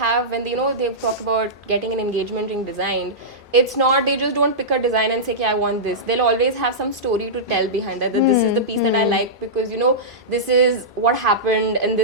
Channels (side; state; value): both; normal; correlation -0.15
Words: they talk about getting an engagement ring designed, it's not, they just don't pick a design and say, okay, I want this. They'll always have some story to tell behind that, that this is the piece that I like because, you know, this is what happened in